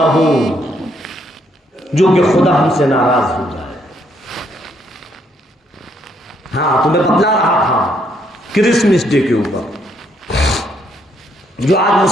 ہو جو کہ خدا ہم سے ناراض ہو جائے۔ ہاں، تمہیں بتلا رہا تھا کرسمس ڈے کے اوپر، جو آج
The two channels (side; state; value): both; normal; correlation 0.72